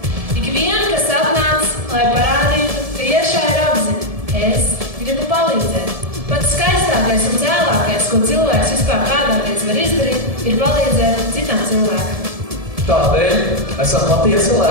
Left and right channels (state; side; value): late; left; 1.7 ms